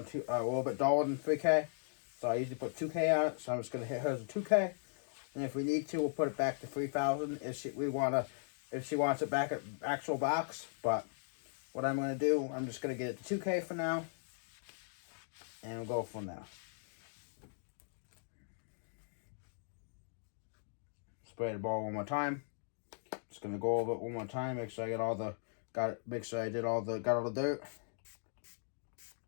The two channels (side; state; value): right; silent; digital silence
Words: a little bit duller than 3K. So I usually put 2K on it. So I'm just going to hit hers with 2K. And if we need to, we'll put it back to 3,000 if she wants it back at actual box. But what I'm going to do, I'm just going to get it to 2K for now. And we'll go from there. Spray the ball one more time. Just going to go over it one more time. Make sure I get all the, make sure I got all the dirt.